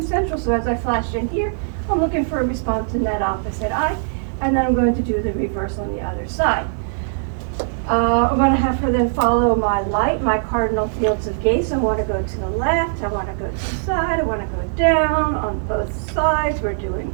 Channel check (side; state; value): left; silent; 55 dB below the other